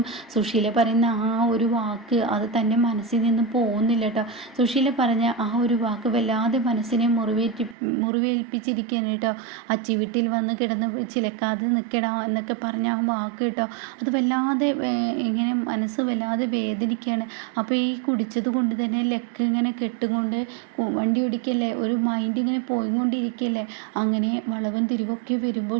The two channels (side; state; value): left; drops out; at 7.8 s